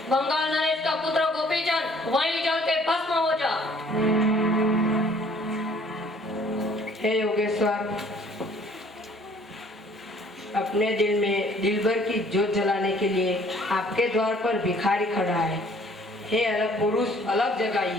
बंगाल नरेश का पुत्र गोपीचंद वहीं जल के भस्म हो जा। हे योगेश्वर, अपने दिल में दिलबर की जोत जलाने के लिए आपके द्वार पर भिखारी खड़ा है। हे अलग पुरुष, अलग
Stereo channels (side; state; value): both; normal; correlation 0.57